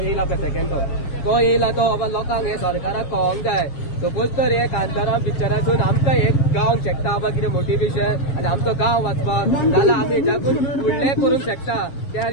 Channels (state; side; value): late; right; 7.3 ms